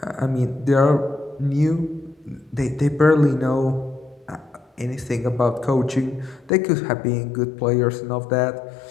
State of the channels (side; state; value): right; drops out; at 6.5 s